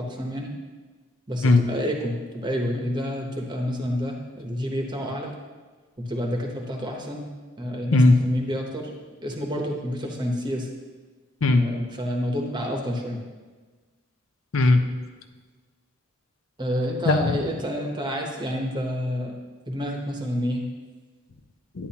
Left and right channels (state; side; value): normal; both; correlation 0.77